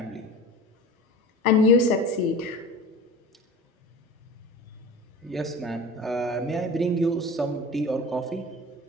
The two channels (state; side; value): normal; both; correlation 0.35